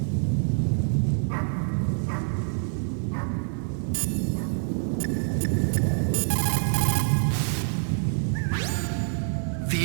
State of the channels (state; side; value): silent; left; 61 dB below the other